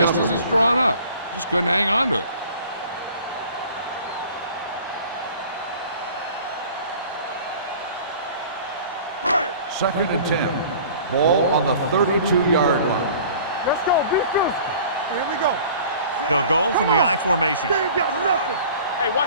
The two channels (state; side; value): inverted; both; correlation -0.46